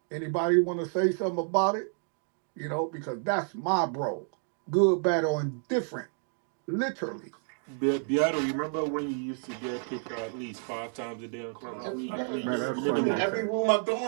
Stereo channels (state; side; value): silent; left; 56 dB below the other